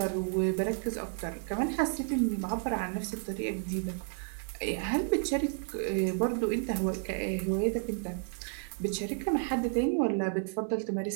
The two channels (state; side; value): silent; left; 57 dB below the other